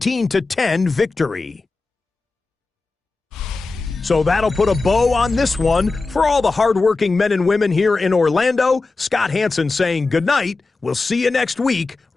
victory. So that'll put a bow on this one. For all the hardworking men and women here in Orlando, Scott Hansen saying goodnight. We'll see you next week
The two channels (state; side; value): quieter; right; 3.7 dB